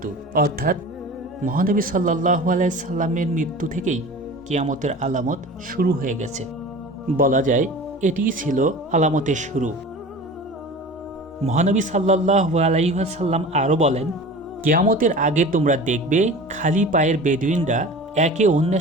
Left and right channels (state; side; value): normal; both; correlation 0.37